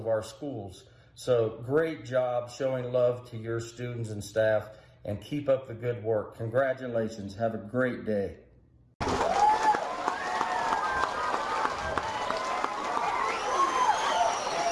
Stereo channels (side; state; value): both; identical; correlation 1.00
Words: our schools. So great job showing love to your students and staff, and keep up the good work. Congratulations. Have a great day.